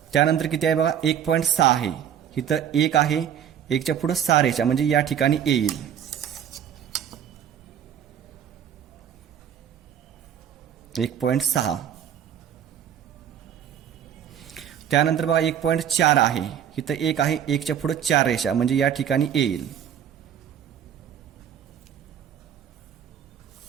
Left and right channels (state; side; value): quieter; left; 9.2 dB